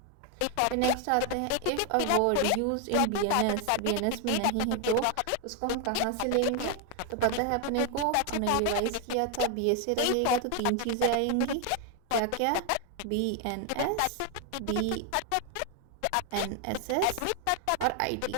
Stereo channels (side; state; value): both; different; correlation 0.01